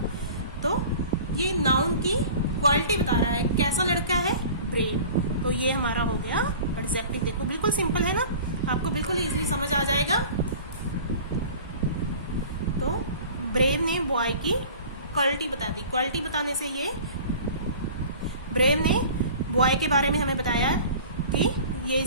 तो ये नाउन की क्वालिटी बता रहा है, कैसा लड़का है? ब्रेव। तो ये हमारा हो गया एडजेक्टिव। देखो बिल्कुल सिंपल है ना, आपको बिल्कुल इजीली समझ आ जाएगा। तो ब्रेव ने बॉय की क्वालिटी बता दी। क्वालिटी बताने से ये ब्रेव ने बॉय के बारे में हमें बताया कि ये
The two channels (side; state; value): both; inverted; correlation -0.42